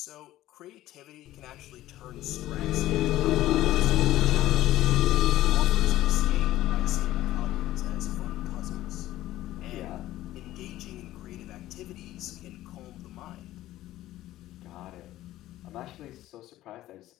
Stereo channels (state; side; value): quieter; right; 14.9 dB